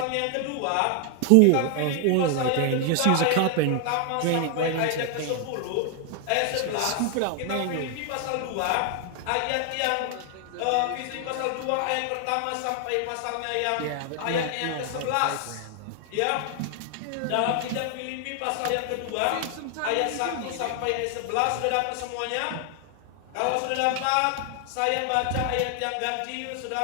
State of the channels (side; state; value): both; different; correlation 0.00